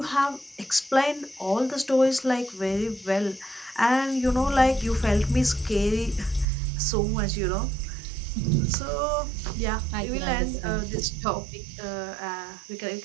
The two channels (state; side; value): drops out; left; at 6.5 s